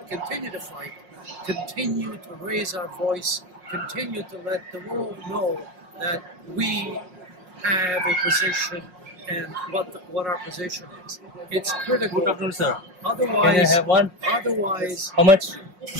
continue to fight, continue to raise our voice, continue to let the world know that we have a position and what our position is. It's critical. Good afternoon, sir. Otherwise, can I have one? Otherwise, How much?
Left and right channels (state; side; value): late; left; 5.6 ms